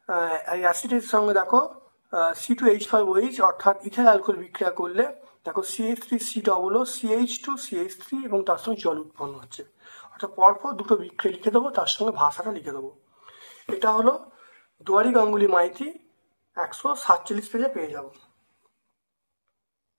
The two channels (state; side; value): inverted; both; correlation -1.00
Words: এই অ্যাসিডের সঙ্গে দেখো C2H5OH অর্থাৎ ইথাইল অ্যালকোহল বিক্রিয়া করলে দেখো CH3COO CH2 CH3 এবং তার সঙ্গে জল উৎপন্ন হচ্ছে। অর্থাৎ পরপর দুটো বিক্রিয়া লিখে দেবো, তার সঙ্গে ভাষাটা লিখে দেবো। এটা হলো দুয়ারি গাঙ্গুলি মাইতি 147 পেজে পেয়ে যাব।